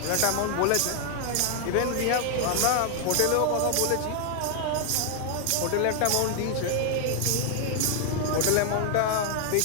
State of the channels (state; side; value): different; both; correlation 0.00